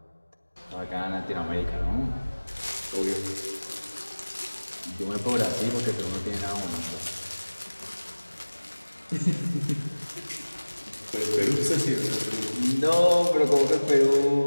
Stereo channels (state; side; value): inverted; both; correlation -1.00